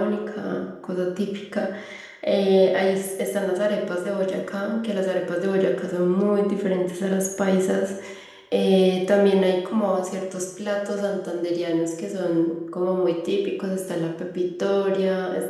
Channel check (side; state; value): both; identical; correlation 1.00